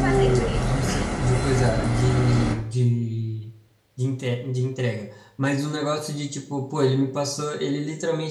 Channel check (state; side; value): identical; both; correlation 1.00